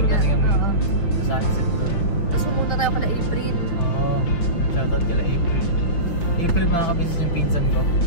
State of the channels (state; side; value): late; right; 5.8 ms